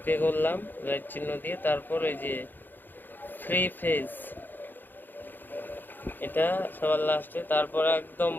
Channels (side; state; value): right; late; 0.091 ms